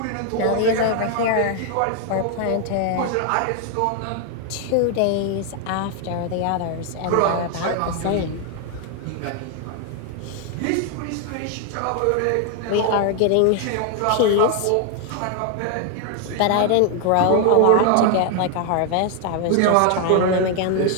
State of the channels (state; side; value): different; both; correlation 0.00